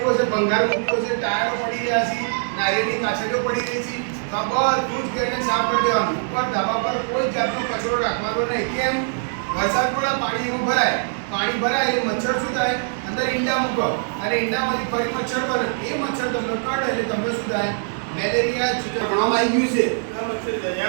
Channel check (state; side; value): silent; left; 64 dB below the other